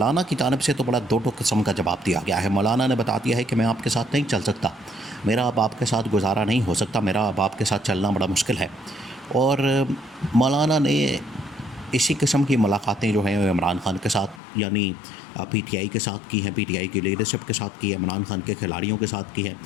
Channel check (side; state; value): right; drops out; at 14.4 s